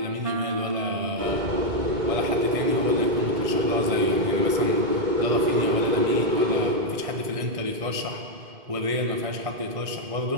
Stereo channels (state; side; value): late; left; 1.6 ms